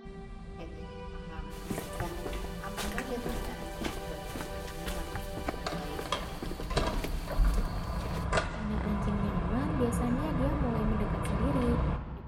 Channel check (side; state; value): both; identical; correlation 1.00